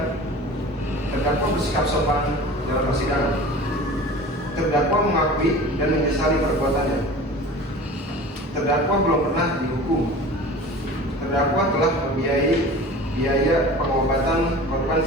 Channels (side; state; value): both; normal; correlation 0.39